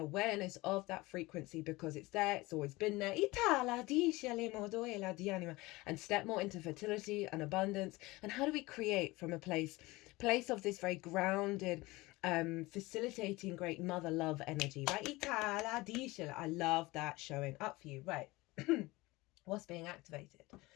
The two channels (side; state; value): right; quieter; 21.3 dB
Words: of that frequency, because it's there, it's always been there, and step more into fertility and abundance. And how do we create from a place of this very grounded, facilitating great mother love energy, right? I love that showing up for you, right? What's being activated